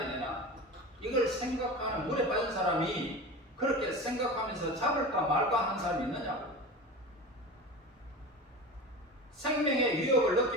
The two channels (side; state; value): both; normal; correlation 0.30